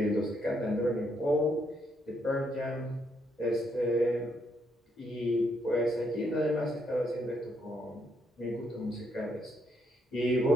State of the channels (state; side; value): normal; both; correlation 0.75